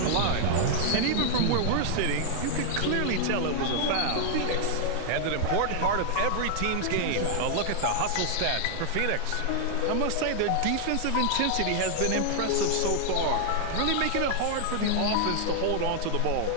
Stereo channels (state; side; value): different; both; correlation 0.00